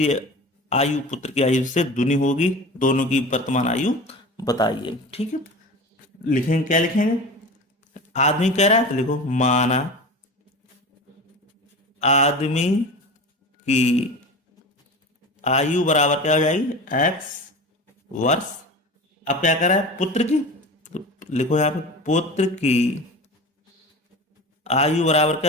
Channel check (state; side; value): normal; both; correlation 0.32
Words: आयु पुत्र की आयु से दुनी होगी। दोनों की वर्तमान आयु बताइए। ठीक है। लिखेंगे, क्या लिखेंगे? आदमी कह रहा है, तो लिखो, माना आदमी की आयु बराबर क्या हो जाएगी? x वर्ष। अब क्या कर रहा है? पुत्र की। तो लिखो यहाँ पे, पुत्र की आयु बराबर